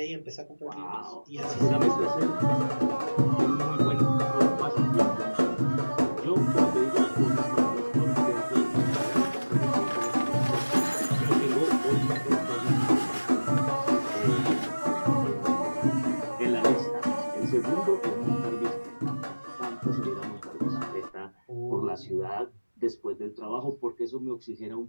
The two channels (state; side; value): inverted; both; correlation -1.00